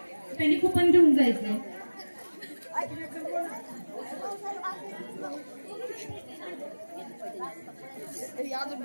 त्यांनी कुपन घेऊन जायचंय.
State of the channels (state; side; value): inverted; both; correlation -1.00